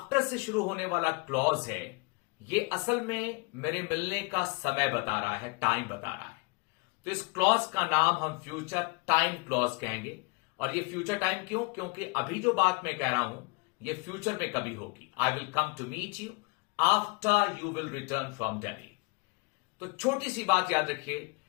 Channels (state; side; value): quieter; right; 29.1 dB